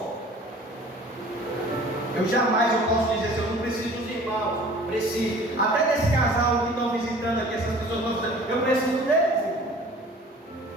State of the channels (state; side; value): normal; both; correlation 0.47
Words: Eu jamais posso dizer assim, eu não preciso dos irmãos, preciso. Até desse casal que estão visitando aqui, essas pessoas estão visitando, eu preciso deles.